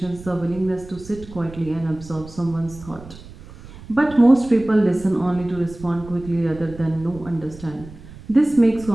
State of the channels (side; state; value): right; noise; rumble, 17 dB below the sound